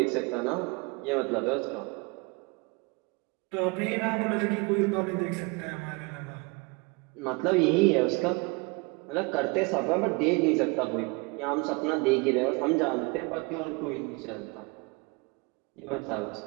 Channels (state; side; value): quieter; left; 28.1 dB